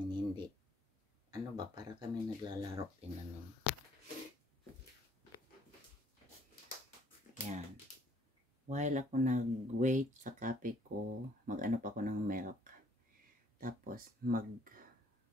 hindi ano ba, para kami naglalaro din ano. Yan, while ako nag-wait sa coffee ko, mag-ano pa ako ng milk, tapos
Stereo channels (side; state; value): both; normal; correlation 0.62